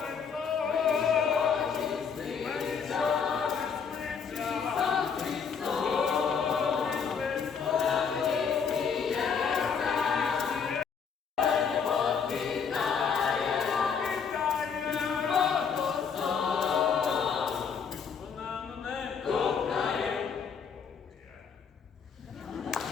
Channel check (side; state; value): right; quieter; 6.3 dB